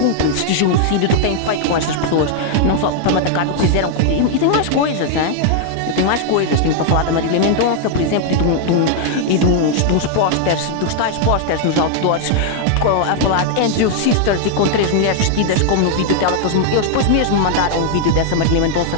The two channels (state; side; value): different; both; correlation -0.01